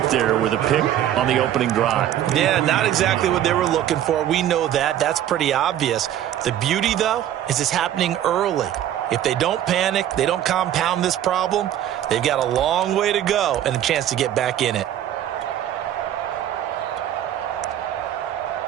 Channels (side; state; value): left; quieter; 11.4 dB